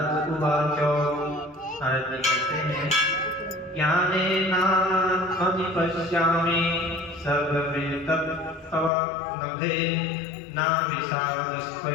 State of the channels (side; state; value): right; drops out; at 8.9 s